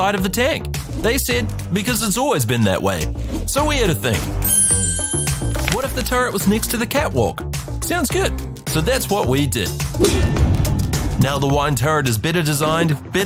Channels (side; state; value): both; identical; correlation 1.00